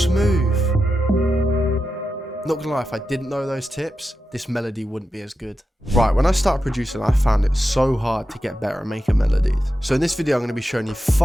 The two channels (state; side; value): normal; both; correlation 0.89